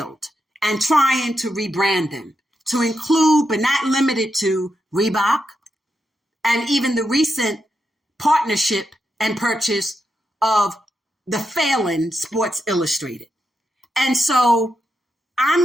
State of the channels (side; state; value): both; normal; correlation 0.85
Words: and trying to rebrand them to include, but not limited to, Reebok, and even the recent partnership and purchase of the failing Sports Illustrated. And so